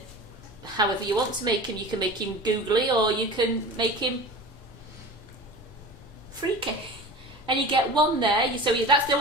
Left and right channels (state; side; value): normal; both; correlation 0.35